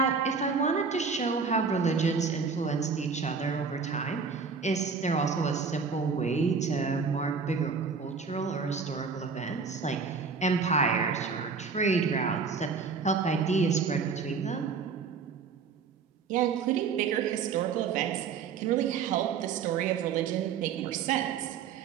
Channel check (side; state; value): left; quieter; 5.4 dB